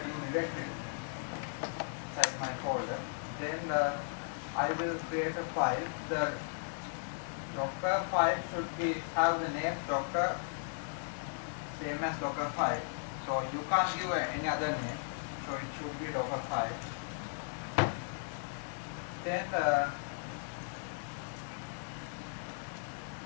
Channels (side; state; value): right; silent; 54 dB below the other